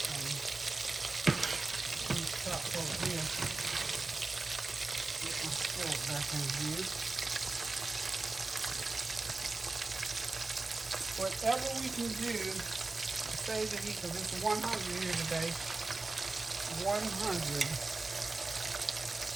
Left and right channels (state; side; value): quieter; left; 3.5 dB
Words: These chops over here. Get my fork back in here. Whatever we can do to save the heat, because it's 100 here today. 100